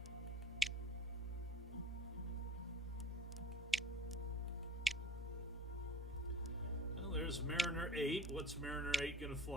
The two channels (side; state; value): both; normal; correlation 0.43